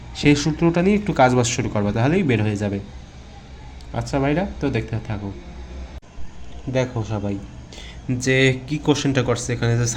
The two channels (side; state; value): both; identical; correlation 1.00